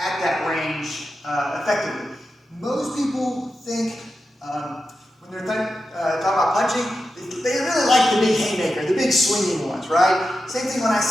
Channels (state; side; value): normal; both; correlation 0.90